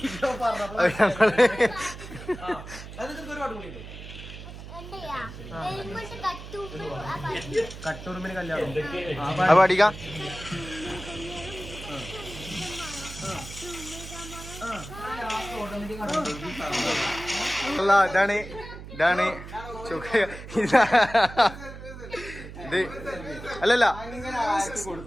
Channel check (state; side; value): noise; right; hum, 13 dB below the sound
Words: കട്ടൂർമിന് കല്യാണം പാടിക്ക. അല്ല, ഇതാണ് ഇത് അല്ലല്ല,